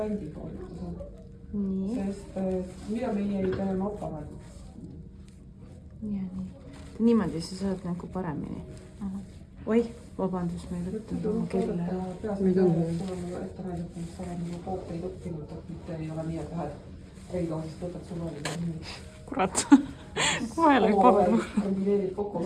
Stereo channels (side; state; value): both; identical; correlation 1.00